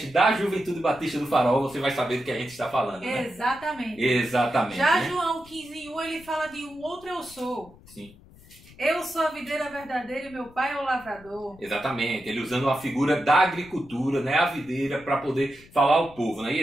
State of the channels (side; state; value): left; noise; rumble, 23 dB below the sound